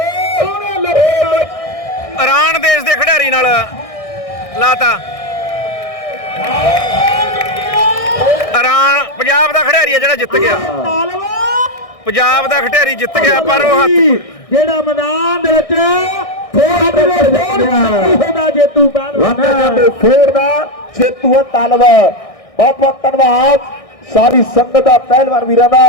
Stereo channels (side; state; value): right; late; 1.6 ms